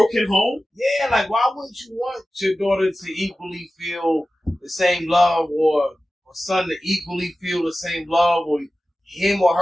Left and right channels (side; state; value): both; normal; correlation 0.95